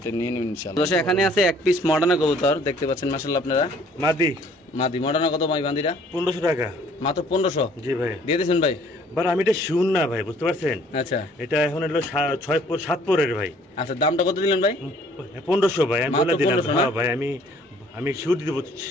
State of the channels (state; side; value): normal; both; correlation 0.58